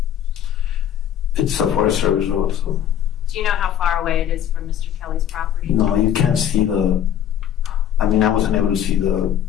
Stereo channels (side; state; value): right; quieter; 10.1 dB